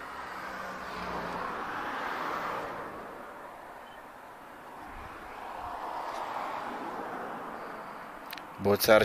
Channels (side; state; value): both; identical; correlation 1.00